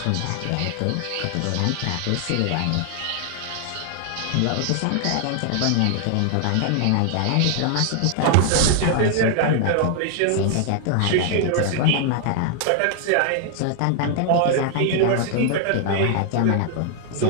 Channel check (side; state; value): both; different; correlation 0.00